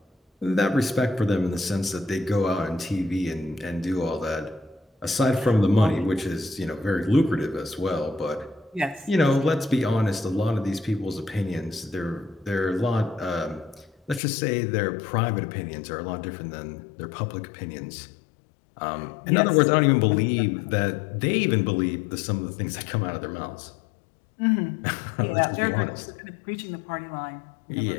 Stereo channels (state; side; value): drops out; right; at 14.2 s